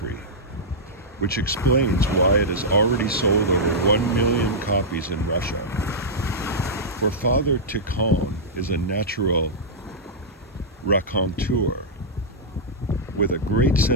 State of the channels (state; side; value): normal; both; correlation -0.10